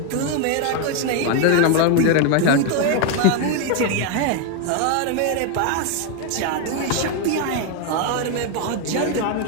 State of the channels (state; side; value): different; both; correlation 0.01